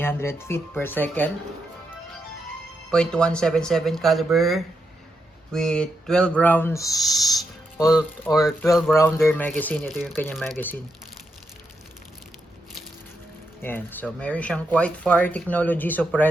feet per second. .177 caliber with 12 rounds or 12 rounder magazine. Ito yung kanyang magazine. Yan. So, meron siyang Quiet Fire Technology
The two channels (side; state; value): both; normal; correlation 0.83